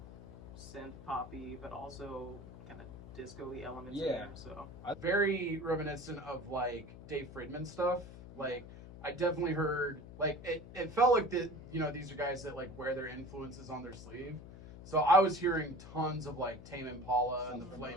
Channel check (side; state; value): left; noise; hum, 14 dB below the sound